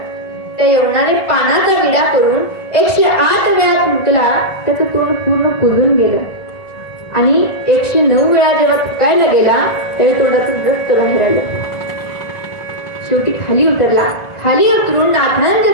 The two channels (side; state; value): right; late; 1.4 ms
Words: त्या यवनाने पानाचा विडा करून 108 वेळा फुंकला. त्याचं तोंड पूर्ण कुजून गेलं आणि 109 वेळा जेव्हा फुकायला गेला त्यावेळी तोंडातून रक्त बाहेर आलं. शेवटी खाली उतरला. खाली उतरून नाथांच्या